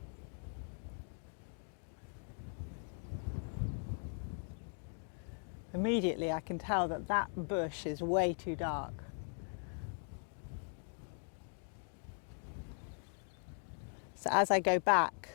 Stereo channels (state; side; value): silent; right; 51 dB below the other